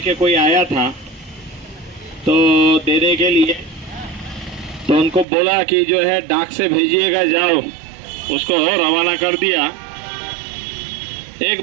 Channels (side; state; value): left; drops out; at 5.2 s